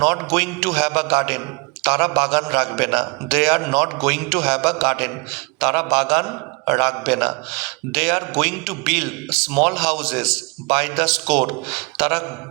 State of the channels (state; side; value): quieter; left; 30.4 dB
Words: not going to have a garden, তারা বাগান রাখবে না। They are not going to have a garden, তারা বাগান রাখবে না। They are going to build small houses by the score, তারা